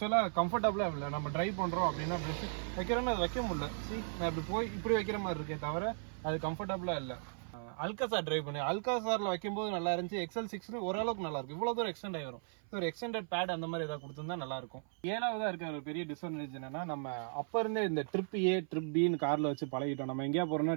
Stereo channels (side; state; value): left; silent; 53 dB below the other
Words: கம்ஃபர்டபுளாக இல்லை. நம்ம ட்ரைவ் பண்ணுறோம் அப்படின்னா ப்ரெஷ் வைக்கிறோன்னு அது வைக்க முடியல. நான் இப்படி வைக்கிற மாதிரி இருக்கே தவிர அது கம்ஃபர்டபுளாக இல்லை. அல்காசார் ட்ரைவ் பண்ணி அல்காசாரில் வைக்கும்போது நல்லா இருந்துச்சு. XL6 ஓரளவுக்கு நல்லா இருக்கும். இவ்வளோ தூரம் எக்ஸ்டெண்ட் ஆகி வரும். ஒரு எக்ஸ்டெண்டட் பேட் அந்த மாதிரி ஏதாவது கொடுத்துருந்தா நல்லாயிருக்கும். 7வதாக இருக்க ஒரு பெரிய டிஸ்அட்வான்டேஜ் என்னன்னா, நம்ம அப்போ இருந்தே இந்த ட்ரிப் ஏ ட்ரிப் பின்னு காரில் வச்சு பழகிட்டோம். நம்ம எங்கேயா போகிறோம்னா